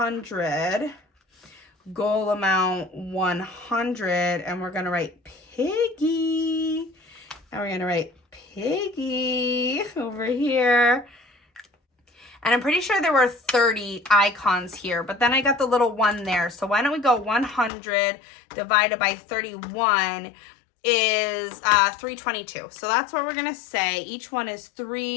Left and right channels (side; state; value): right; drops out; at 17.7 s